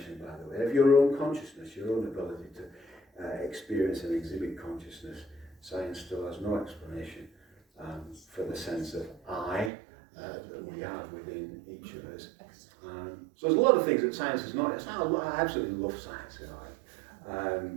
by the way, of your own consciousness, your own ability to experience and exhibit consciousness. Science still has no explanation for the sense of I that we have within each of us. So there's a lot of things that science is not. I absolutely love science,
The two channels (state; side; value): drops out; left; at 9.7 s